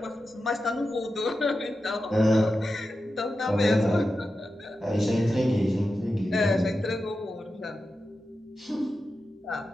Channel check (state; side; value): normal; both; correlation 0.91